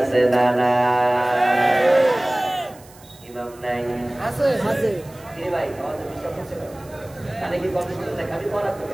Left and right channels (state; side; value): noise; right; hiss, 24 dB below the sound